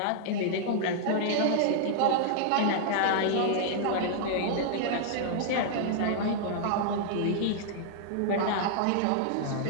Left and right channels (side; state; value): both; different; correlation -0.01